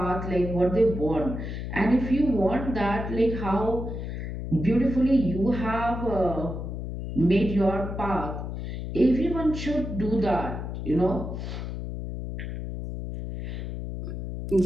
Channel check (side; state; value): left; noise; hum, 6 dB below the sound